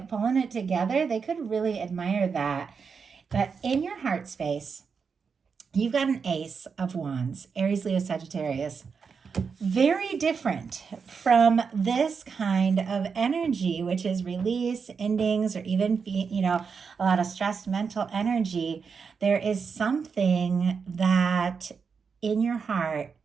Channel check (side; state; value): left; quieter; 5.7 dB